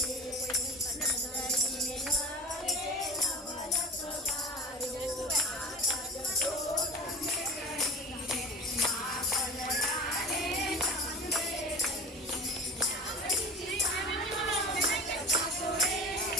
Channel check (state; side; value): normal; both; correlation 0.37